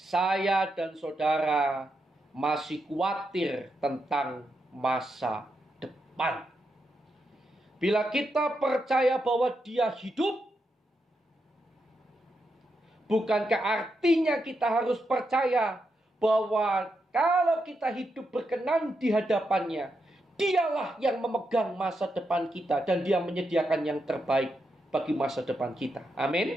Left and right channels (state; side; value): normal; both; correlation 0.84